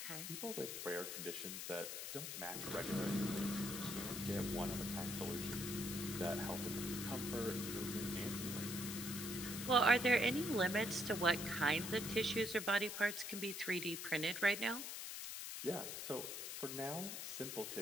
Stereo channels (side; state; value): left; noise; hiss, 5 dB below the sound